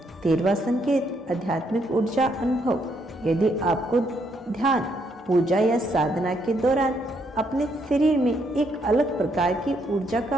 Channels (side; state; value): both; normal; correlation 0.74